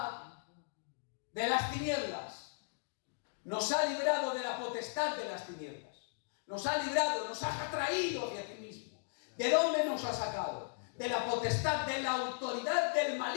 de las tinieblas. Nos ha librado de la potestad de las tinieblas. Nos ha librado, nos ha traído hacia ti mismo. ¿De dónde nos ha sacado? De la potestad, de la autoridad del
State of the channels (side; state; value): right; silent; digital silence